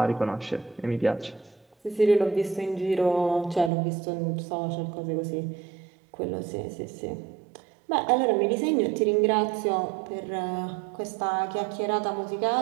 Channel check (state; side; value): drops out; left; at 3.7 s